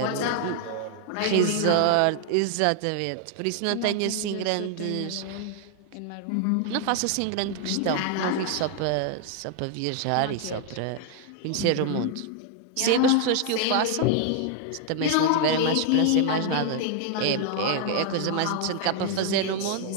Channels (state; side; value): different; both; correlation 0.00